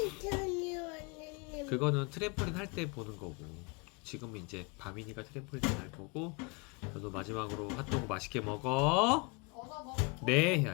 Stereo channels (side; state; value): right; quieter; 30.7 dB